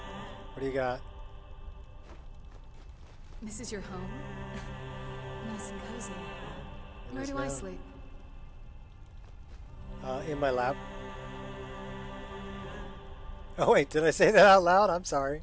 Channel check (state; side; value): identical; both; correlation 1.00